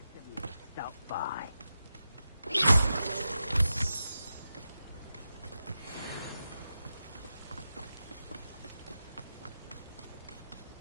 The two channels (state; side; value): inverted; both; correlation -0.91